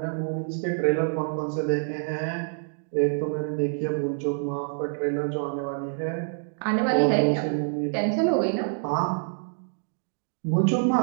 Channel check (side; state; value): left; silent; digital silence